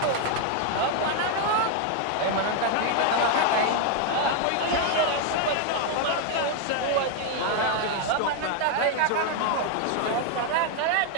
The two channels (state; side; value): different; both; correlation 0.01